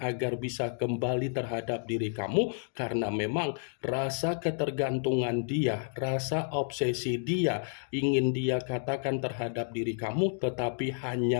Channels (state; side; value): silent; right; digital silence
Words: bisa kembali terhadap diri kamu, karena memang rasa ketergantungan dia, rasa obsesi dia, ingin dia katakan terhadap diri kamu, tetapi